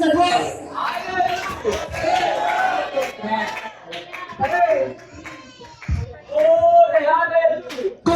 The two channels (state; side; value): identical; both; correlation 1.00